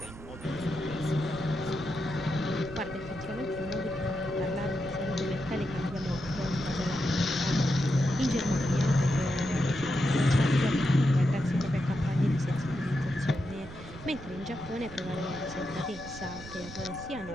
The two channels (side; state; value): right; noise; rumble, 15 dB below the sound